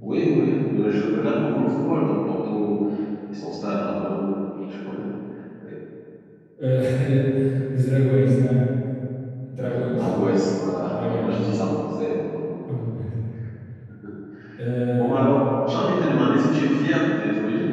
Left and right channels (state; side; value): identical; both; correlation 1.00